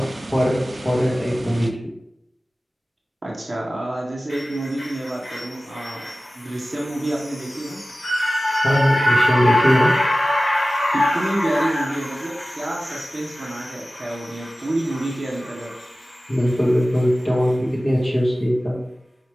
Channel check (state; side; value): normal; both; correlation 0.96